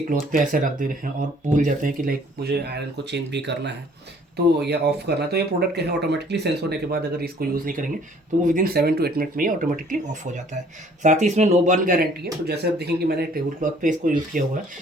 क्लॉथ पे ऐसे रख दे रहे हैं और भूल जाते हैं कि लाइक मुझे आयरन को चेंज भी करना है तो या ऑफ करना है, तो ये प्रोडक्ट क्या है ऑटोमेटिकली सेंस होने के बाद अगर इसको यूज़ नहीं करेंगे तो वो विदिन 7 to 8 मिनट में ही ऑटोमेटिकली ऑफ हो जाता है। साथ ही इसमें नो बर्न गारंटी है, तो जैसे आप देखेंगे मैंने टेबल क्लॉथ पे इसको यूज़ किया हुआ है,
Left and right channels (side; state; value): both; normal; correlation 0.57